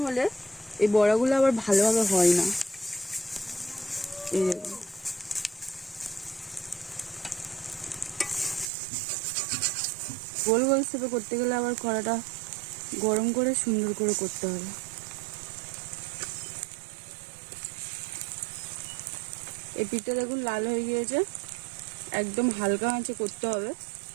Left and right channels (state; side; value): drops out; left; at 8.7 s